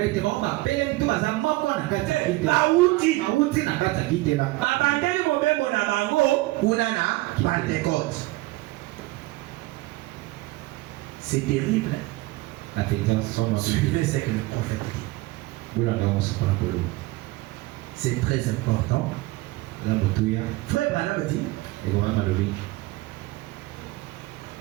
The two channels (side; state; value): left; quieter; 20.1 dB